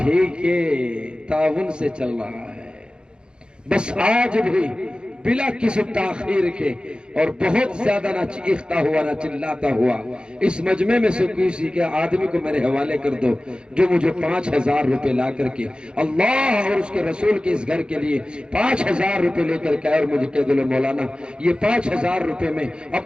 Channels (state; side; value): late; left; 0.051 ms